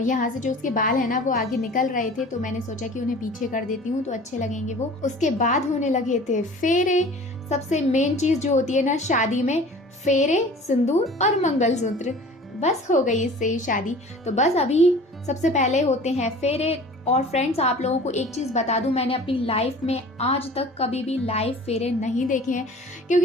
से जो उसके बाल है ना वो आगे निकल रहे थे, तो मैंने सोचा कि उन्हें पीछे कर देती हूँ तो अच्छे लगेंगे वो। उसके बाद होने लगे थे फेरे। सबसे मेन चीज़ जो होती है ना शादी में, फेरे, सिंदूर और मंगलसूत्र, बस हो गई इससे ही शादी। तो बस अभी सबसे पहले होते हैं फेरे। और फ्रेंड्स आप लोगों को एक चीज़ बता दूं, मैंने अपनी लाइफ में आज तक कभी भी लाइव फेरे नहीं देखे हैं,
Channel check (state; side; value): normal; both; correlation 0.44